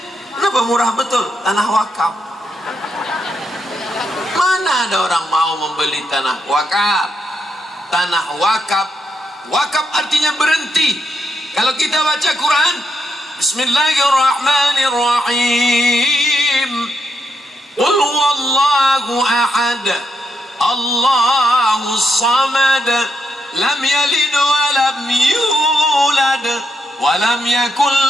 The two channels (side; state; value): both; normal; correlation 0.80